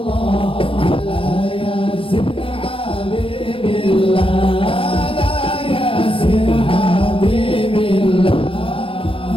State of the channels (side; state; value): right; late; 0.26 ms